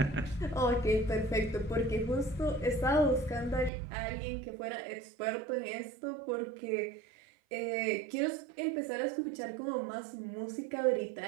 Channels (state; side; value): drops out; left; at 3.7 s